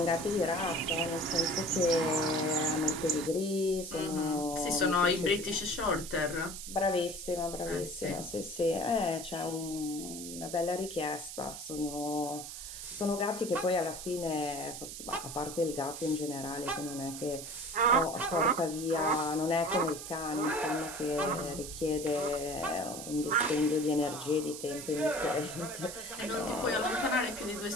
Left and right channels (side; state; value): right; noise; hiss, 9 dB below the sound